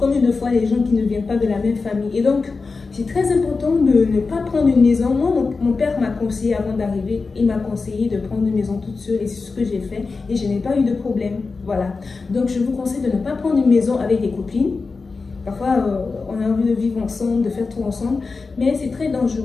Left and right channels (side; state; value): right; quieter; 4.3 dB